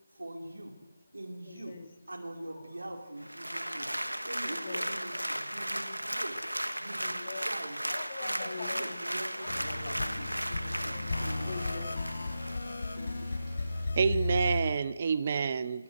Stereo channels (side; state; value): both; inverted; correlation -0.91